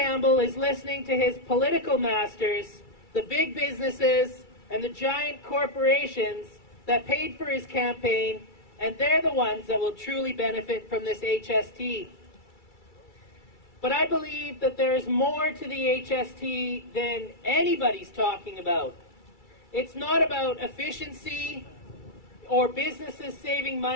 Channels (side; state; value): right; late; 2.3 ms